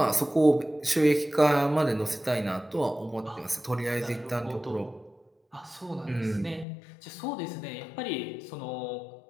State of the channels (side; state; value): right; drops out; at 6.7 s